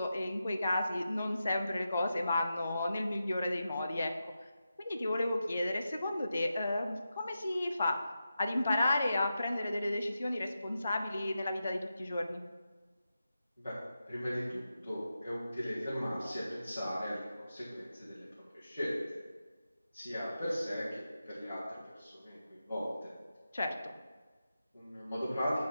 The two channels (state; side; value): inverted; both; correlation -0.90